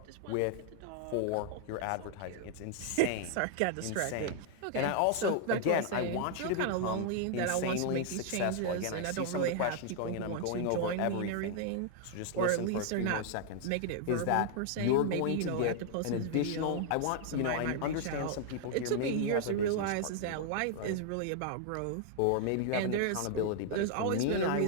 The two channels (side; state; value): both; different; correlation 0.00